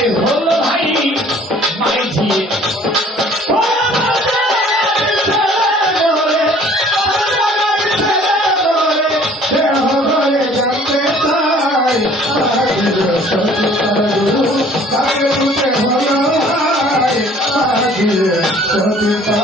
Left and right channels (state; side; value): normal; both; correlation 0.54